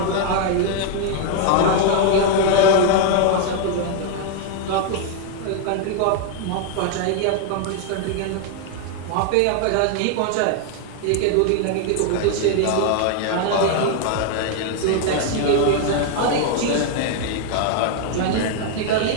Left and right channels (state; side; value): different; both; correlation 0.00